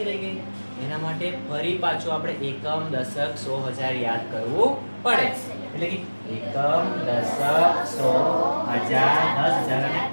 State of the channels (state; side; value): inverted; both; correlation -1.00